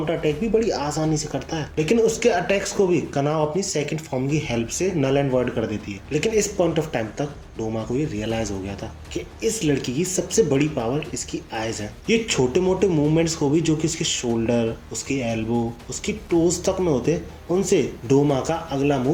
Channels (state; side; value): identical; both; correlation 1.00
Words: अटैक भी बड़ी आसानी से करता है। लेकिन उसके अटैक्स को भी कनाव अपनी सेकंड फॉर्म की हेल्प से नल एंड वॉइड कर देती है। लेकिन इस पॉइंट ऑफ टाइम तक डोमा को ये रियलाइज हो गया था कि इस लड़की की सबसे बड़ी पावर इसकी आईज है। ये छोटे मोटे मूवमेंट्स को भी जो कि उसके शोल्डर, उसके एल्बो, उसकी टोज तक में होते, उनसे डोमा का अगला मूव